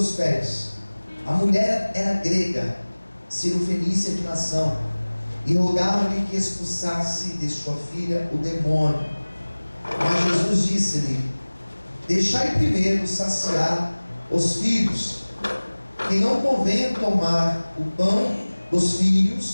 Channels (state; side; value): inverted; both; correlation -1.00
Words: pés. A mulher era grega, cirofenícia de nação, e rogava-lhe que expulsasse de sua filha o demônio. Mas Jesus disse-lhe: deixai primeiro saciar os filhos, que não convém tomar o pão dos